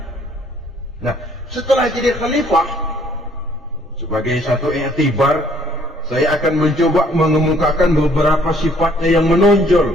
Nah, setelah jadi khalifah, sebagai satu i'tibar, saya akan mencoba mengemukakan beberapa sifatnya yang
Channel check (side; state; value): both; normal; correlation 0.62